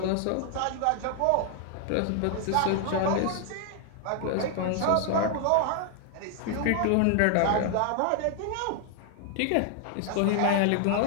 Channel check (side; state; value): both; different; correlation 0.00